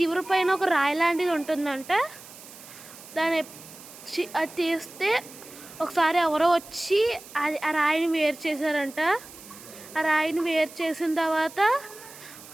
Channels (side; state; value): right; noise; hiss, 18 dB below the sound